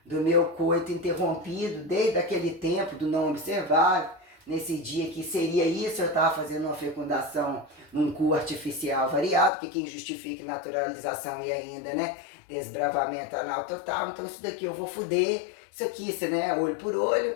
coito interrompido, desde aquele tempo do não observado. Nesse dia que seria isso, eu estava fazendo uma fecundação num cu artificial variado, que quem justifica naturalização e ainda, né, desbravamento anal total. Então isso daqui eu vou fuder, isso aqui, né, olho por olho,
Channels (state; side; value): drops out; right; at 9.5 s